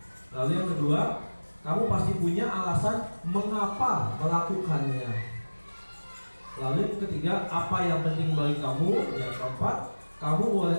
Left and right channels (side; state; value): both; inverted; correlation -1.00